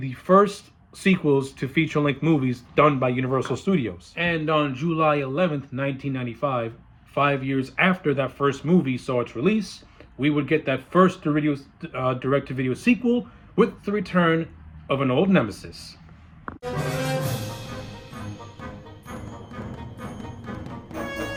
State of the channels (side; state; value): both; identical; correlation 1.00